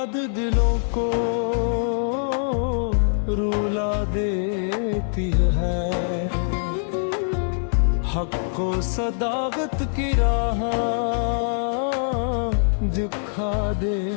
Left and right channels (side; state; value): right; silent; digital silence